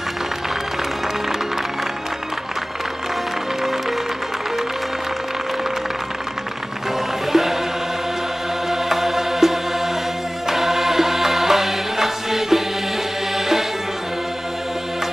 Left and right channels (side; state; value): both; normal; correlation 0.98